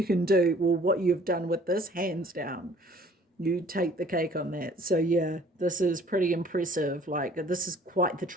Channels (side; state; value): both; normal; correlation 0.55